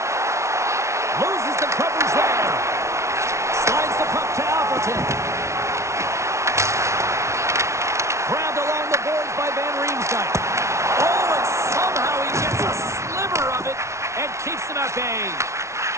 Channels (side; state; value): left; late; 0.13 ms